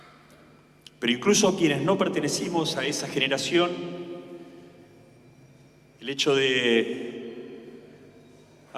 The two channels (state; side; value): identical; both; correlation 1.00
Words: Pero incluso quienes no pertenecimos a esa generación, el hecho de